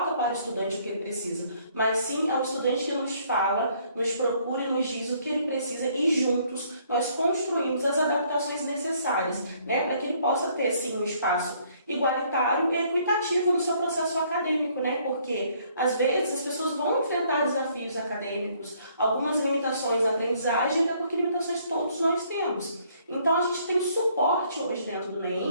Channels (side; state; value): both; inverted; correlation -0.64